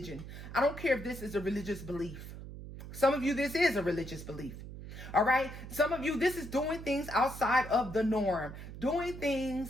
I don't care if this is a religious belief. Some of you, this is a religious belief. All right. Some of you, this is doing things outside of the norm, doing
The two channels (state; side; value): noise; right; hum, 11 dB below the sound